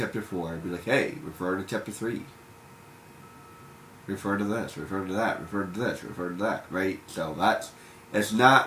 4, it'll be like, hey, refer to chapter 3. Refer to this, refer to that, refer to this, refer to that, right? So it's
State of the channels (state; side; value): identical; both; correlation 1.00